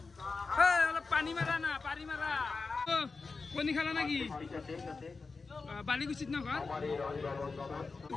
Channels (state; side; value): quieter; right; 4.3 dB